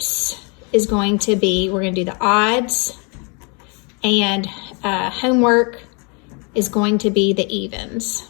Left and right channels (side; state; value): right; quieter; 34.3 dB